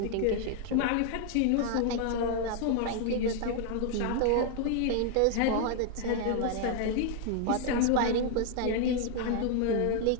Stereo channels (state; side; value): different; both; correlation 0.00